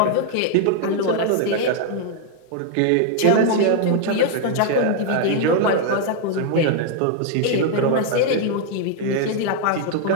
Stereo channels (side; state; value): both; different; correlation 0.00